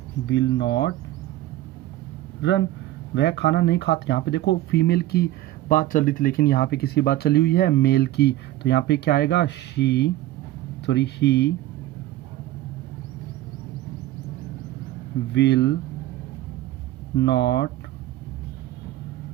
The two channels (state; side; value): quieter; left; 14.8 dB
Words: विल नॉट रन। वह खाना नहीं खाता, यहाँ पे देखो फीमेल की बात चल रही थी लेकिन यहाँ पे किसी बात चली हुई है, मेल की। तो यहाँ पे क्या आएगा, he will not